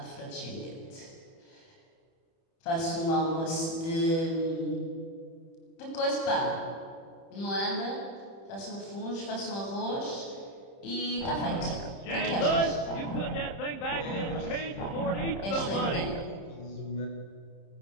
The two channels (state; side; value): late; right; 30 ms